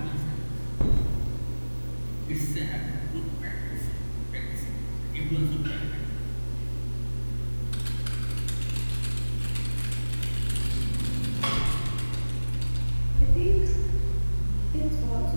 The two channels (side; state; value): both; inverted; correlation -1.00